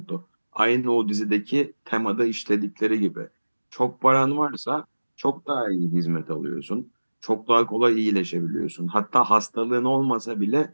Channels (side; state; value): both; inverted; correlation -1.00